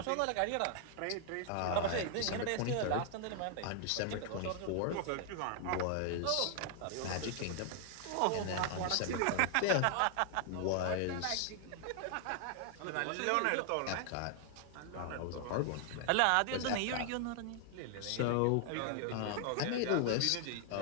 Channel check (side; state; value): both; different; correlation 0.00